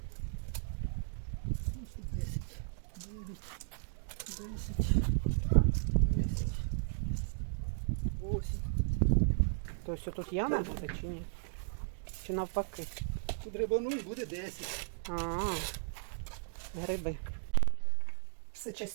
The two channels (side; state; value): left; silent; digital silence